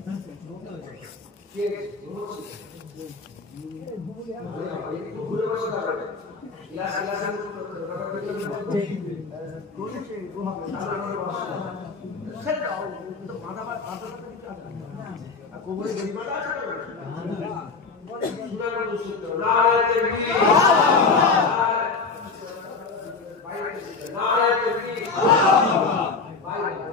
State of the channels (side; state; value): right; quieter; 4.6 dB